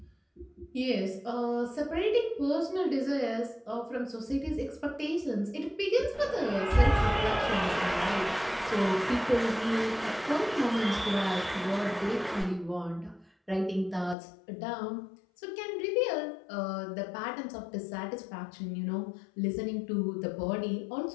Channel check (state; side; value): drops out; right; at 14.2 s